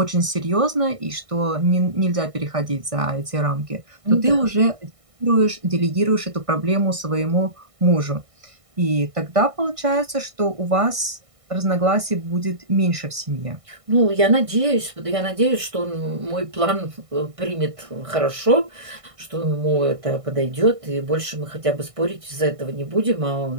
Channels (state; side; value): late; left; 1.6 ms